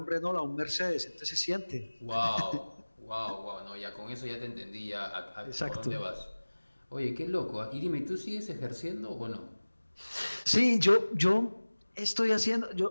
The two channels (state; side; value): inverted; both; correlation -1.00